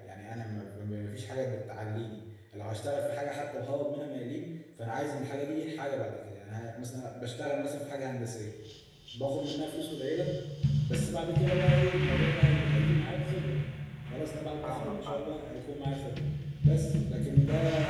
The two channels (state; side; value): identical; both; correlation 1.00